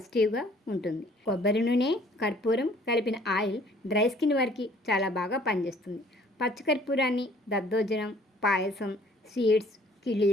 ఉంటుంది. కొబ్బరి నూనె, కర్పూరం కలిపిన ఆయిల్ డ్రై స్కిన్ వారికి చాలా బాగా పనిచేస్తుంది. పచ్చకర్పూరాన్ని దద్దోజనం, పాయసం, స్వీట్స్,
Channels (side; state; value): both; normal; correlation 0.56